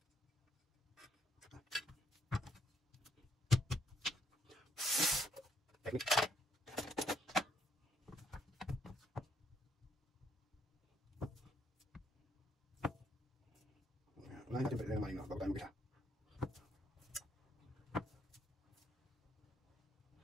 Unahin natin pwede ng maling, no? Bago tayo mag-isa.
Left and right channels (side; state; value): both; normal; correlation 0.72